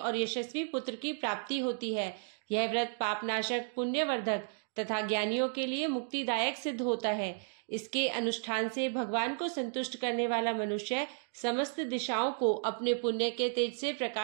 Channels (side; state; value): left; silent; 56 dB below the other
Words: यशस्वी पुत्र की प्राप्ति होती है। यह व्रत पापनाशक, पुण्यवर्धक तथा ज्ञानियों के लिए मुक्तिदायक सिद्ध होता है। इसके अनुष्ठान से भगवान को संतुष्ट करने वाला मनुष्य समस्त दिशाओं को अपने पुण्य के तेज से